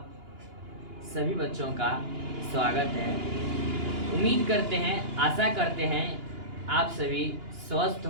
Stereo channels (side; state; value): left; late; 2.9 ms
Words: सभी बच्चों का स्वागत है। उम्मीद करते हैं, आशा करते हैं आप सभी स्वस्थ